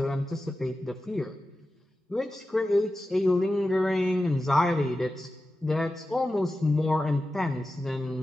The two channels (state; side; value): normal; both; correlation 0.93